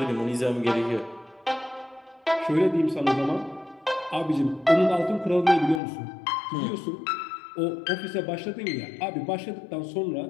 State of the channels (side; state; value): right; drops out; at 5.8 s